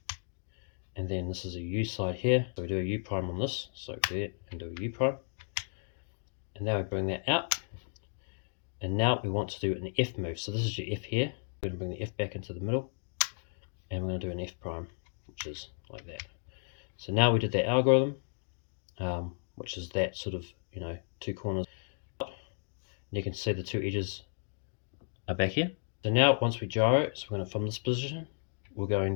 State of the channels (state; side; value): silent; right; digital silence